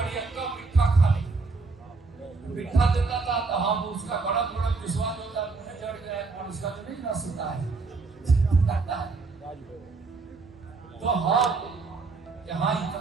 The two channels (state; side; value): quieter; left; 4.1 dB